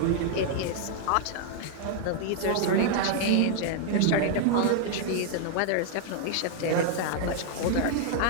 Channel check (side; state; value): both; different; correlation 0.00